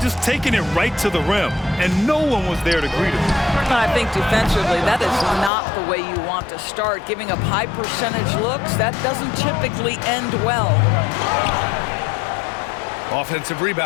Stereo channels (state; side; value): drops out; right; at 5.5 s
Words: taking it right to the rim, and no one was there to greet him. And I think defensively, that is not the way you want to start. Giving up high percentage looks, that doesn't typically end well. Offensive